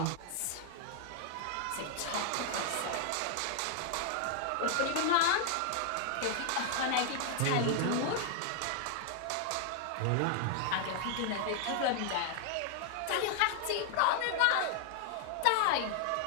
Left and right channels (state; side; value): different; both; correlation 0.00